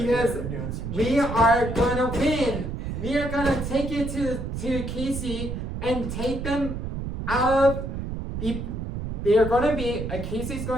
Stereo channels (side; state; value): right; noise; rumble, 5 dB below the sound